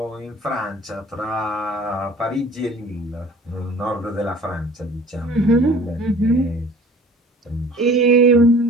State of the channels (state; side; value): normal; both; correlation 0.48